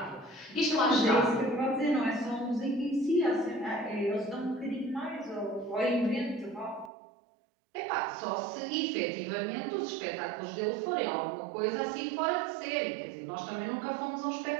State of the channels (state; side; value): drops out; left; at 6.9 s